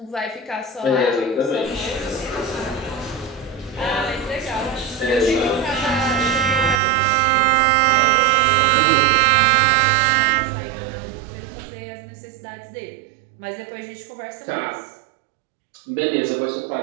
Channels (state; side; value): drops out; left; at 6.8 s